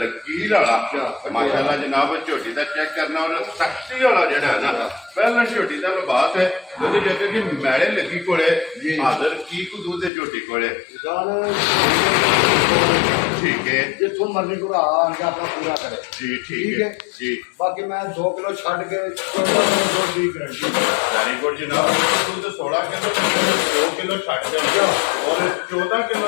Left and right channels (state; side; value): drops out; right; at 10.1 s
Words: ਵਾਲਾ ਮਾਸ਼ਾਅੱਲਾ ਜਨਾਬ ਝੋਟੀ ਦਾ ਚੈੱਕ ਕਰਨਾ ਔਰ ਸਖਤੀ ਵਾਲਾ ਜਿਹੜਾ ਹੈ ਨਾ ਪਹਿਲਾਂ ਝੋਟੀ ਦਾ ਲਿਬਾਸ ਹੈ ਉਹਦੇ ਜੱਗੇ ਕਿ ਮੈਲੇ ਲੱਗੀ ਕੋਲੇ ਹਾਜ਼ਰ ਕੀ ਕੁ ਦੁੱਧ ਦੇ ਝੋਟੀ ਕੋਲੇ ਗੱਲ ਠੀਕ ਹੈ ਜਿੱਥੋਂ ਮਰਜ਼ੀ ਘੁਰਾ ਆ ਕੇ ਆਪਣਾ ਪੂਰਾ ਕਰੇ ਜੀ ਠੀਕ ਹੈ ਜੀ ਬਾਕੀ ਮੈਂ 2 ਕਿਲੋ ਛੱਡ ਕੇ 14 ਕਿਲੋ ਦੁੱਧ ਦੀ ਗਰੰਟੀ ਵੈਰੀ ਗੁੱਡ ਜਨਾਬ ਦੁੱਧ 16 ਕਿਲੋ 2 ਕਿਲੋ ਛੱਡ ਦਿੰਦਾ ਔਰ 14